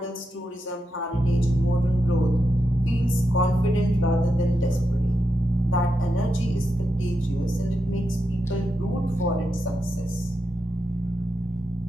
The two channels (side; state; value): both; normal; correlation 0.86